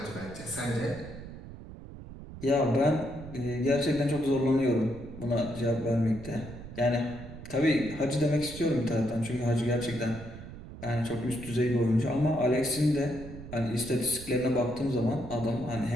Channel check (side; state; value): right; noise; rumble, 13 dB below the sound